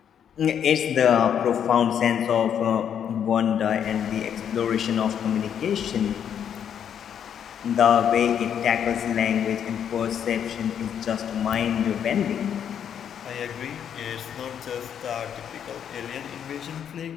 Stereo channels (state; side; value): quieter; right; 8.7 dB